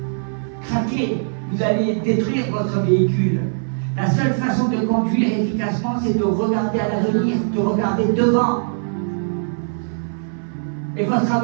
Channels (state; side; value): silent; left; 59 dB below the other